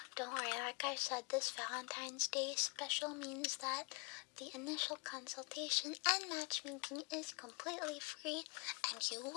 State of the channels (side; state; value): right; quieter; 31.1 dB